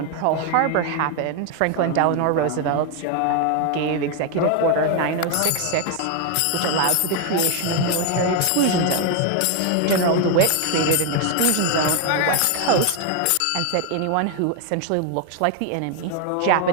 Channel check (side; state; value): both; different; correlation 0.01